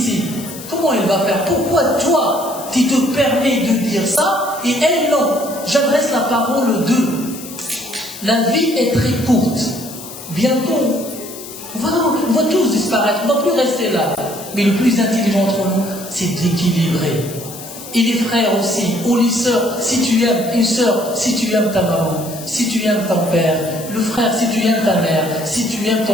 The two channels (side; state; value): left; noise; hiss, 13 dB below the sound